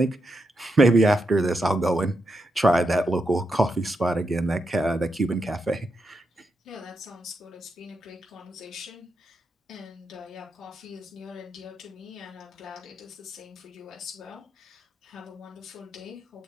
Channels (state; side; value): normal; both; correlation 0.84